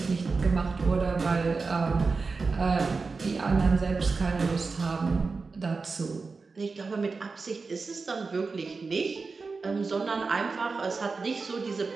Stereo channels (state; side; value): quieter; left; 4.3 dB